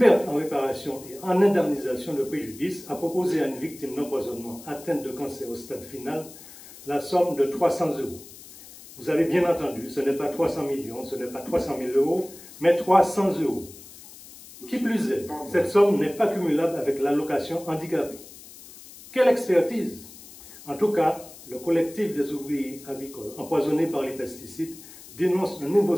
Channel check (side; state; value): left; noise; hiss, 18 dB below the sound